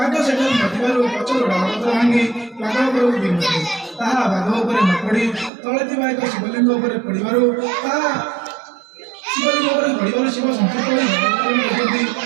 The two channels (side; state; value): left; drops out; at 5.5 s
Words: ସେଠାରୁ ନଥିବାରୁ ପଛରୁ ଡାଳପତ୍ର ଭାଙ୍ଗି ବାଘ ଉପରକୁ ବିନ୍ଧୁଥିଲେ ତାହା ବାଘ ଉପରେ ନ ପଡ଼ି ତଳେ ଥିବା ଏକ ଶିବଲିଙ୍ଗ ଉପରେ ପଡ଼ିବାରୁ ତାହା ଶିବଲିଙ୍ଗ ଉପରେ ପଡ଼ିବାରୁ ଶିବ ସନ୍ତୁଷ୍ଟ ହୋଇ ଭଗବାନଙ୍କୁ